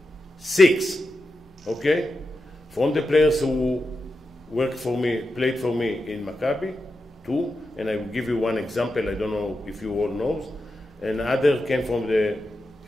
6. Okay? From the players who worked for me, played for me in Maccabi, 2, and I will give you one example, I don't know if you all know, and other came from the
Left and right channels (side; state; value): both; normal; correlation 0.89